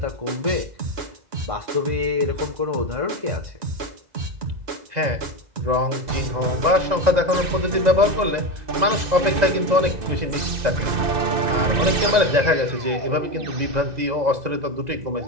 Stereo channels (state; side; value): late; left; 2.0 ms